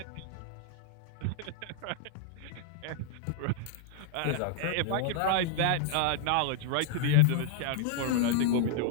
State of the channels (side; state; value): both; different; correlation -0.01